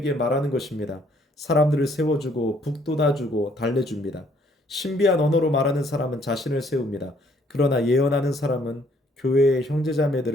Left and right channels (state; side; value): normal; both; correlation 0.64